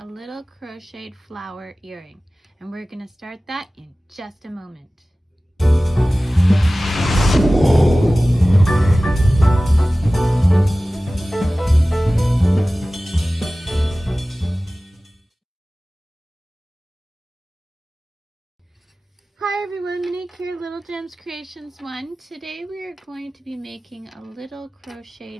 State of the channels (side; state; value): both; normal; correlation 0.97